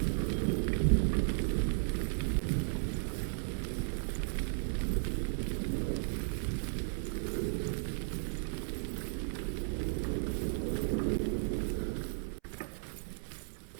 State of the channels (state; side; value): silent; left; 54 dB below the other